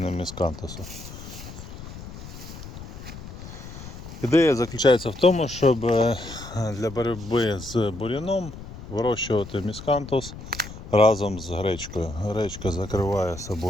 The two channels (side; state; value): left; noise; rumble, 13 dB below the sound